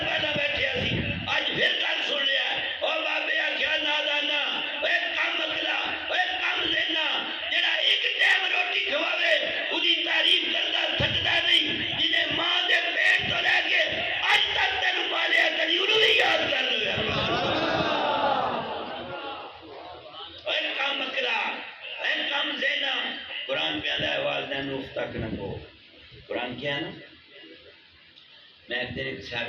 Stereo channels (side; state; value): both; identical; correlation 1.00